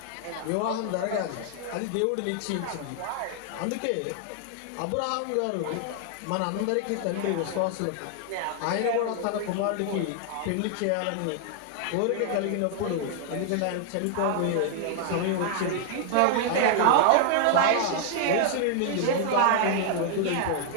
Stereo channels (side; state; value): both; different; correlation 0.00